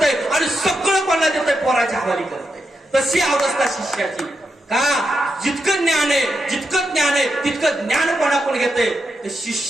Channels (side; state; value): both; normal; correlation 0.85